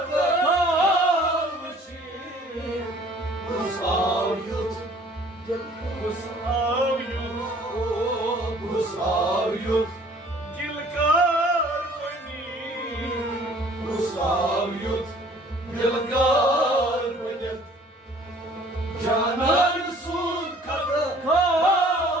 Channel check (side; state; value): both; normal; correlation 0.54